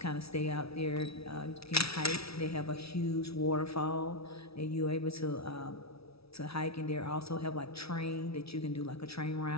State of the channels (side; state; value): right; late; 0.77 ms